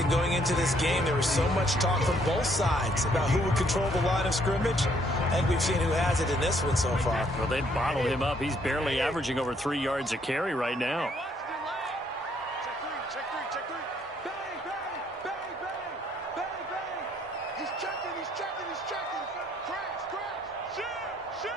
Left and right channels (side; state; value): both; normal; correlation 0.67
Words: going into this game. There was so much talk from both sides about who would control the line of scrimmage. And we've seen who has it in this one so far. Well, they bottled him up. He's barely averaging over 3 yards a carry right now. Check three. Bang, bang, bang, bang, bang, bang. He's checking. Crash.